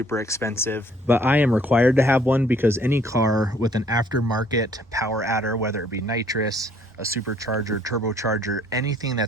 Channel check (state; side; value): normal; both; correlation 0.61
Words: expensive, but I am required to have one because any car with an aftermarket power adder, whether it be nitrous, a supercharger, turbocharger, anything